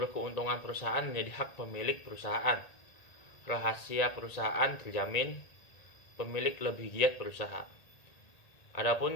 keuntungan perusahaan menjadi hak pemilik perusahaan. Rahasia perusahaan terjamin, pemilik lebih giat berusaha.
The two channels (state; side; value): late; right; 1.8 ms